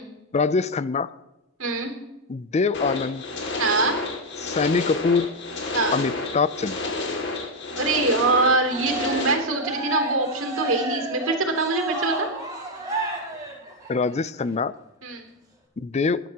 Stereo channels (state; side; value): normal; both; correlation 0.05